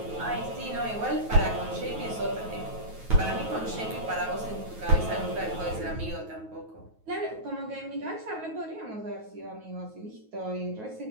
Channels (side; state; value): left; late; 9.3 ms